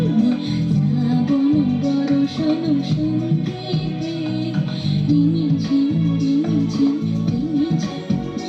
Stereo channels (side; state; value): both; identical; correlation 1.00